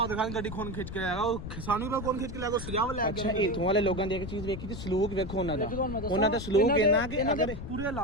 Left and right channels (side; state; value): left; noise; rumble, 8 dB below the sound